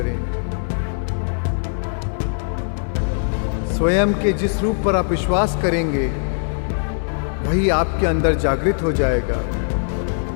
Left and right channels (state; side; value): silent; right; 56 dB below the other